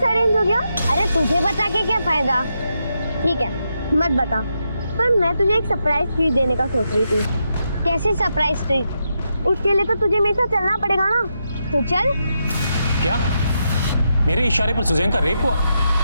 अरेंज हो गया? अरे तुझे बता के क्या फायदा। ठीक है, मत बता, पर मैं तुझे एक सरप्राइज ट्रीट देने का सोच रही थी। कैसे सरप्राइज ट्रीट? उसके लिए तो तुझे मेरे साथ चलना पड़ेगा ना, तो चल। क्या मेरे इशारे पर सुजैन का रेप हुआ?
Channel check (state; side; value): inverted; both; correlation -0.84